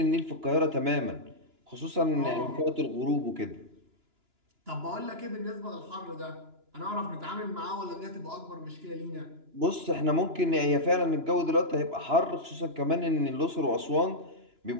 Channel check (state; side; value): late; left; 2.9 ms